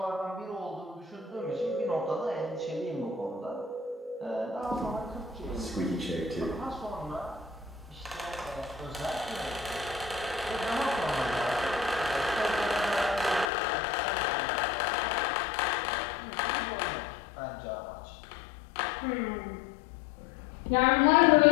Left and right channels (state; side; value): drops out; right; at 13.5 s